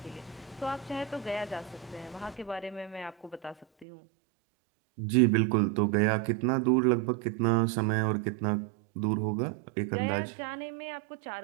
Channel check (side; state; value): left; drops out; at 3.9 s